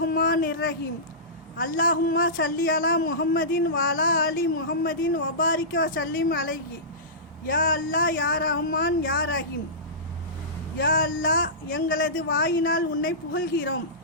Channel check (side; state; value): both; normal; correlation -0.20